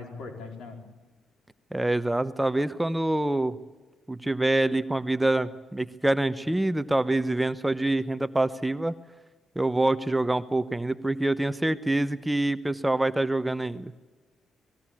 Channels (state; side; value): normal; both; correlation 0.98